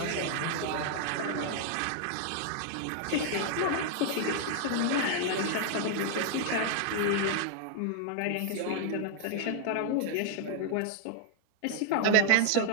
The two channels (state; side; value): different; both; correlation 0.00